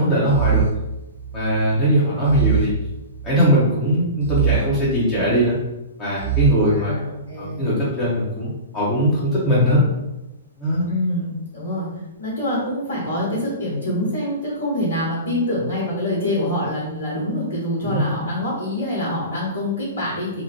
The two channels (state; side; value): inverted; both; correlation -0.31